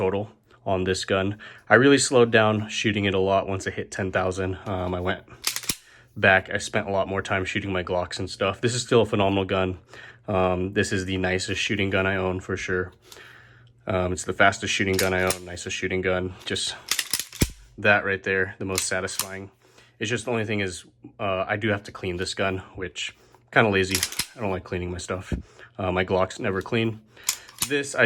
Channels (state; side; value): identical; both; correlation 1.00